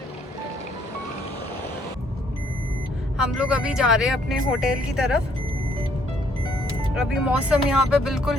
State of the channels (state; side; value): normal; both; correlation 0.66